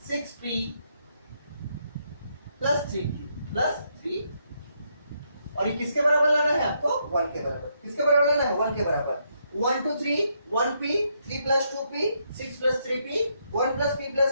6p plus 3q plus 3, और ये किसके बराबर लाना है आपको 1 के बराबर, किसके बराबर लाना है 1 के बराबर, 1 2 3 1p 3 plus 2p 6 plus 3p 1 plus p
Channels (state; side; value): inverted; both; correlation -0.76